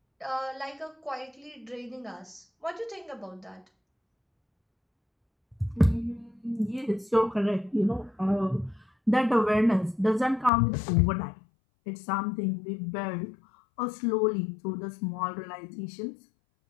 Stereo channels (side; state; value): right; drops out; at 10.5 s